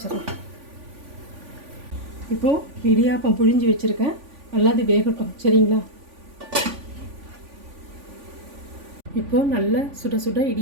இப்போது இடியாப்பம் புழிஞ்சு வச்சுருக்கேன், நல்லா அது வேகட்டும், சரிங்களா? இப்போது நல்ல சுட சுட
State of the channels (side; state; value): left; late; 3.5 ms